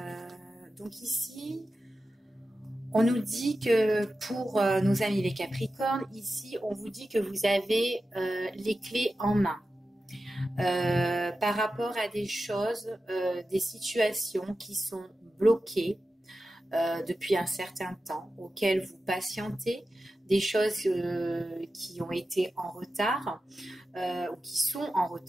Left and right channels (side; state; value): both; normal; correlation 0.93